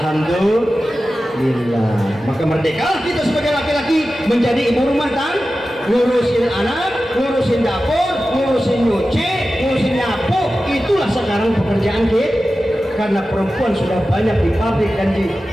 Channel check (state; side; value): normal; both; correlation 0.94